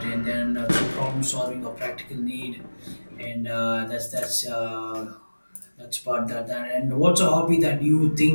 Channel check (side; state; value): both; inverted; correlation -1.00